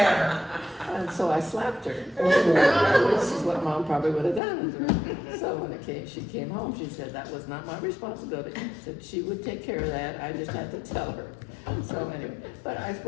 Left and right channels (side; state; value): right; drops out; at 4.4 s